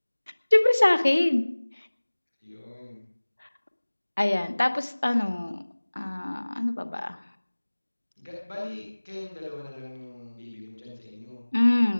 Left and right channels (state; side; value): inverted; both; correlation -1.00